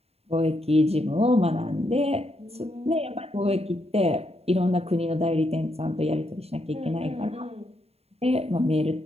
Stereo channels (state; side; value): late; left; 0.30 ms